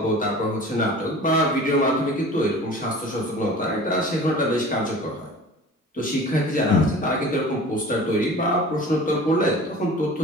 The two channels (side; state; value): both; normal; correlation 0.41